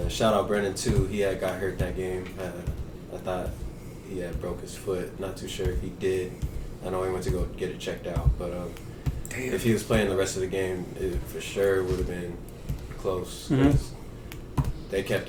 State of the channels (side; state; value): both; identical; correlation 1.00